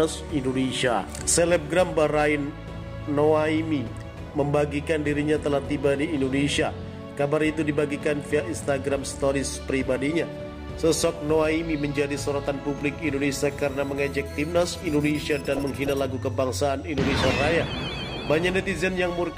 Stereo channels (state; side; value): identical; both; correlation 1.00